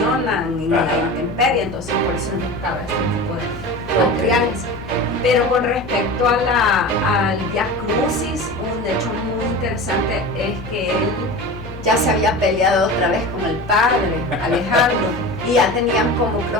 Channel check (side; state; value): both; normal; correlation 0.31